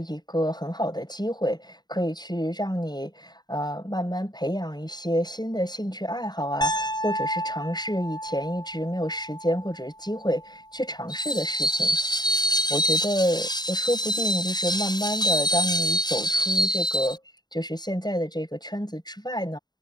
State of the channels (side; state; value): right; late; 0.20 ms